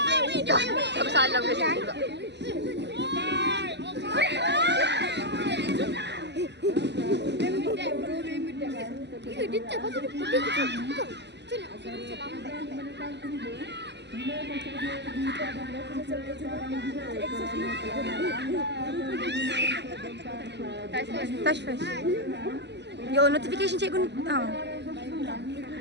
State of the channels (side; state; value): left; late; 0.50 ms